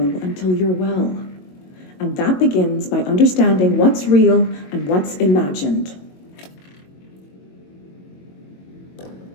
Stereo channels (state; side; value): late; right; 22 ms